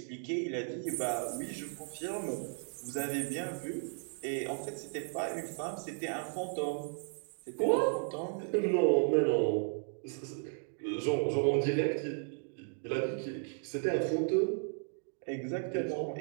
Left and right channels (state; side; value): silent; left; 55 dB below the other